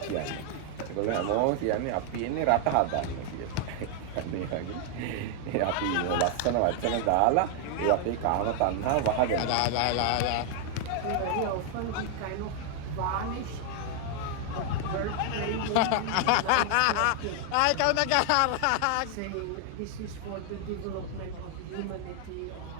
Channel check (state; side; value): different; both; correlation 0.00